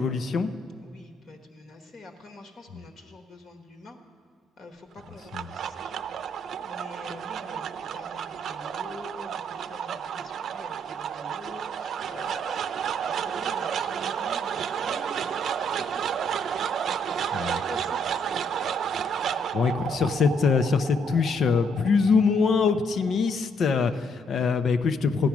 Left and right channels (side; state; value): both; normal; correlation 0.71